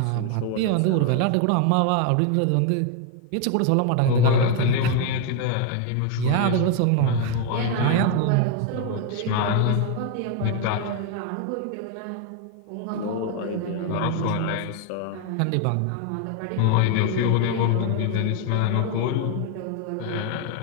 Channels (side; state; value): both; different; correlation 0.01